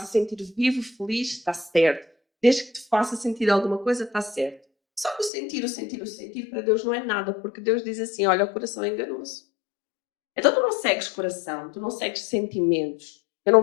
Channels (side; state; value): right; drops out; at 5.3 s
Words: sentir vivo, feliz, está certo. Desde que te faça sentir alguma coisa, está certo. Só que o sentir para Deus não é nada, porque Deus diz assim: olha, o coração é enganoso. Então tu não segues coração, tu não segues sentimentos. Eu